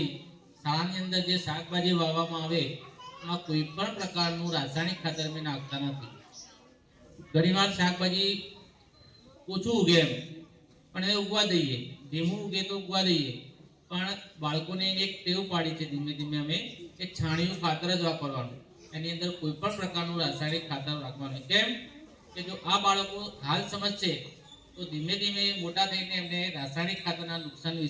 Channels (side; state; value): both; identical; correlation 1.00